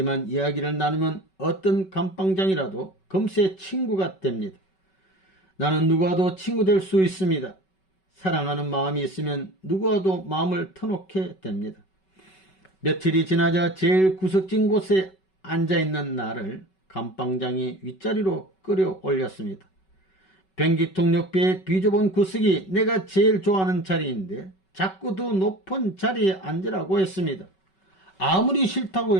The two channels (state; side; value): late; right; 5.3 ms